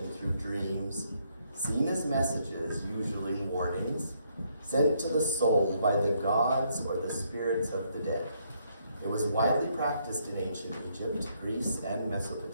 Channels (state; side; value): inverted; both; correlation -0.72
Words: through dreams, seen as messages, usually warnings, sent to the soul by the gods or the spirits of the dead. It was widely practiced in ancient Egypt, Greece, and